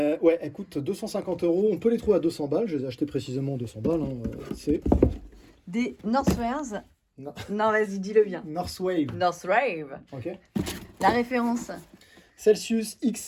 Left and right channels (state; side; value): identical; both; correlation 1.00